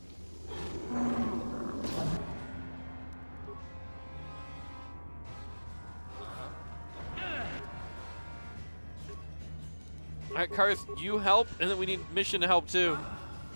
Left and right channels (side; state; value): both; inverted; correlation -1.00